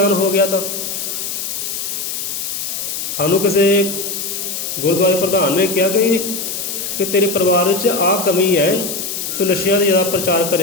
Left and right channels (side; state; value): left; noise; hiss, 4 dB below the sound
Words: ਹੋ ਗਿਆ ਤਾਂ? ਸਾਨੂੰ ਕਿਸੇ ਗੁਰਦੁਆਰੇ ਪ੍ਰਧਾਨ ਨੇ ਕਿਹਾ ਕਿ ਤੇਰੇ ਪਰਿਵਾਰ ਵਿੱਚ ਆਹ ਕਮੀ ਹੈ, ਤੂੰ ਨਸ਼ਿਆਂ ਦਾ ਜ਼ਿਆਦਾ ਪ੍ਰਚਾਰ